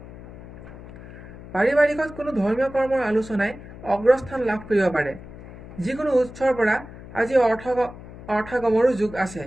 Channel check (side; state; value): left; noise; hum, 15 dB below the sound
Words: পাৰিবাৰিকত কোনো ধৰ্মীয় কৰ্মৰ আলোচনাই অগ্ৰস্থান লাভ কৰিব পাৰে। যিকোনো উৎসৰ পৰা আজি অৰ্থগমৰো যোগ আছে।